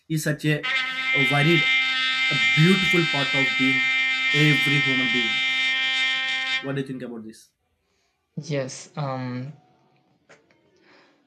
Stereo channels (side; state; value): both; identical; correlation 1.00